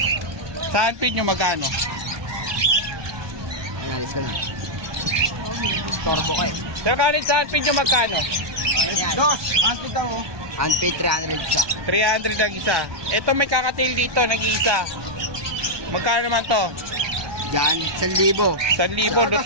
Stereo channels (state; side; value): late; left; 1.2 ms